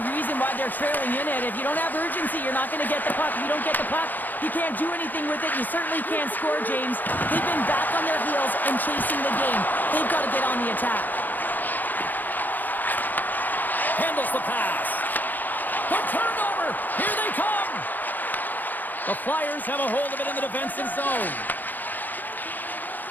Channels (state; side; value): late; right; 0.086 ms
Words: reason why they're trailing in it, if you don't have urgency, you're not going to get the puck. If you don't get the puck, you can't do anything with it. You certainly can't score, James. They've been back on their heels and chasing the game. They've got to get on the attack. Handles the pass. The turnover. Here they come. The Flyers have a hold of it in the defensive zone.